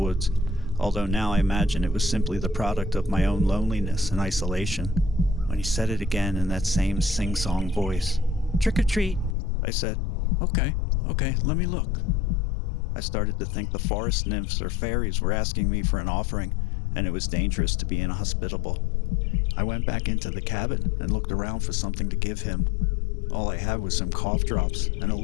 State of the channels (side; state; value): right; drops out; at 9.3 s